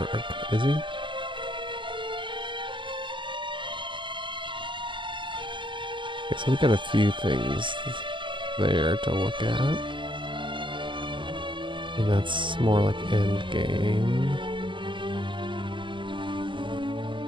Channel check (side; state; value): left; late; 0.24 ms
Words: is he? Okay, so we got a few things there to look at. And that's more like end game.